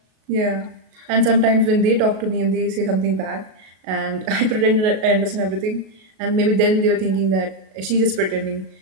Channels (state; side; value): late; left; 37 ms